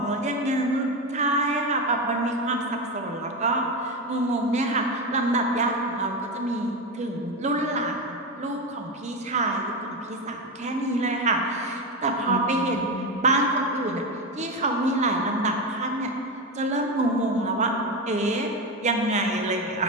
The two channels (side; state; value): both; normal; correlation 0.16